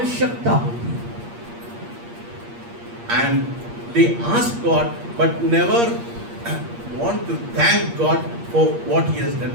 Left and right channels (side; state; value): left; late; 8.5 ms